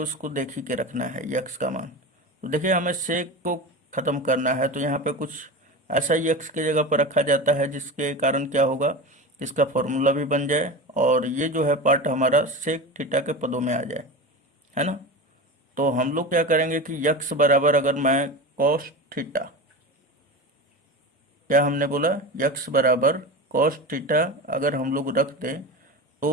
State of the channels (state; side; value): normal; both; correlation 0.27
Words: इसको देख ही के रखना है यक्स का मान। तो देखिए हमें सेक को ख़त्म करना है, तो यहाँ पे कुछ ऐसा यक्स के जगह पर रखा जाता है जिसके कारण क्या होगा, इसका फॉर्मूला भी बन जाए, और ये जो है पार्ट हमारा सेक थीटा के पदों में आ जाए, है ना। तो हम लोग क्या करेंगे कि यक्स बराबर, अगर मैं कॉस थीटा, क्या हमने बोला, यक्स बराबर कॉस थीटा अगर हम लोग रख दें